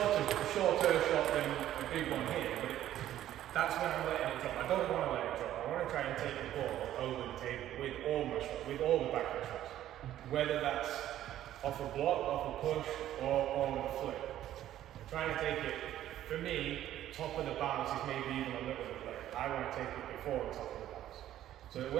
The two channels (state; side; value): quieter; left; 12.5 dB